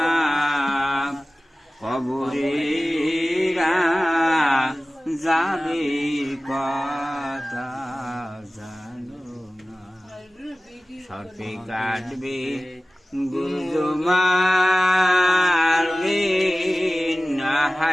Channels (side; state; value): both; normal; correlation 0.96